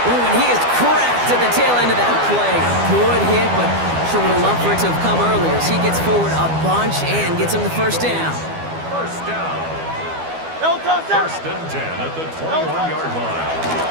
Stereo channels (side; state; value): left; late; 12 ms